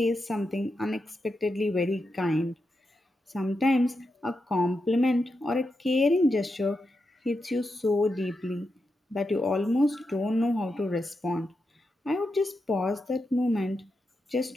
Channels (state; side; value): normal; both; correlation 0.87